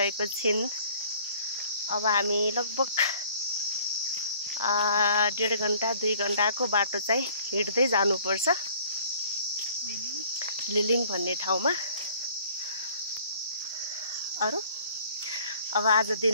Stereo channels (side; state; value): both; inverted; correlation -0.56